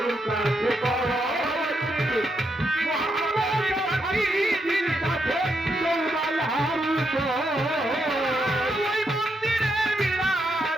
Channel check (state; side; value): normal; both; correlation 0.80